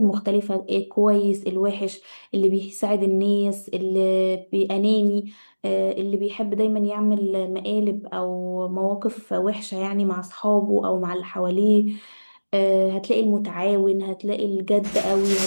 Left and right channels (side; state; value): both; inverted; correlation -1.00